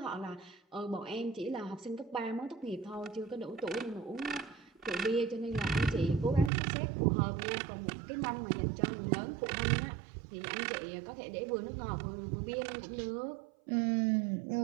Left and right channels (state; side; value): drops out; left; at 6.5 s